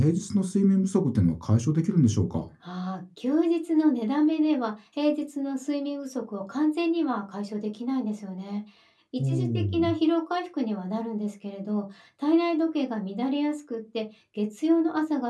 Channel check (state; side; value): identical; both; correlation 1.00